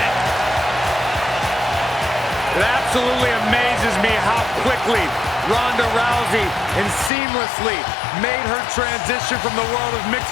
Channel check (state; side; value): drops out; right; at 7.1 s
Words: It absolutely amazes me how quickly Ronda Rousey and seamlessly made her transition from the world of